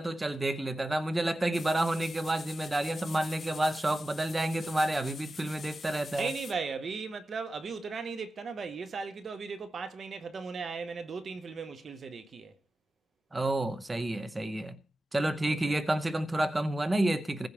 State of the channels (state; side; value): normal; both; correlation 0.93